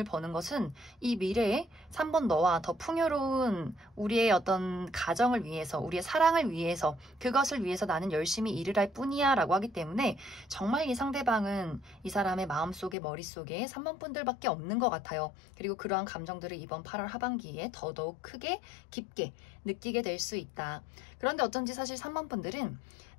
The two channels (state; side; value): drops out; right; at 13.0 s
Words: 버는 것은 이 미래에 3번 너와 더 풍요로운 우리의 어떤 가정을 위해서, 우리의 사랑을 위해서, 그것을 위해서 나는 열심히 일을 할 뿐이야 라고 하기 때문에 정말 이 상대방은 이 사람의 마음속에 머릿속에 3번 분들밖에 없는 것 같아요. 그리고 그러한 감정들을 이번 8월 하반기에 더더욱 크게 깊게 느끼게 될 수 있다. 그런데 어쩐지 사실 3번 분들은